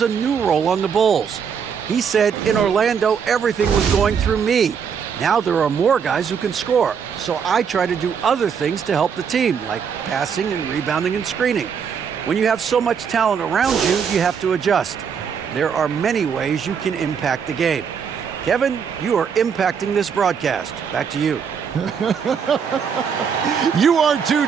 a new role on the Bulls. He said, in Orlando, everything was going through me. Now there are more guys who can score, so I try to do other things to help the team, like passing and rebounding and screening. When you have so much talent around you, you have to adjust. There are many ways you can impact the game. Kevin, you are impacting this broadcast. Back to you. You are too,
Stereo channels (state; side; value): quieter; left; 6.9 dB